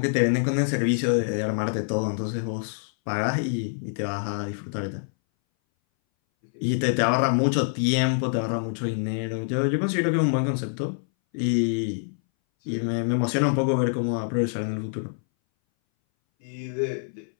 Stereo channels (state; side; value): silent; right; 60 dB below the other